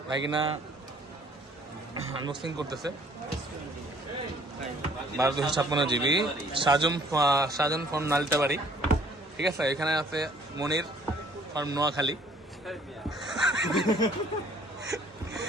ভাগিনা আনবক্সিং করতেছে। 12/256 GB সাজন ফর্ম নালিতাবাড়ি, ঠিক আছে। এখানে আছে মনির ফর্ম নোয়াখালী।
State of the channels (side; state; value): both; normal; correlation 0.58